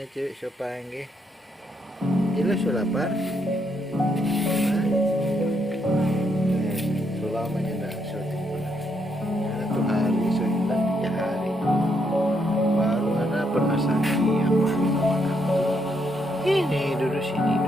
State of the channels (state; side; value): normal; both; correlation 0.76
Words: cewek sopange. Ilo lapar. Selamanya nggak syuting pernah. Satu hari so hilang 3 hari. Baru ada pernah sakit yang makan. Ini duduk sini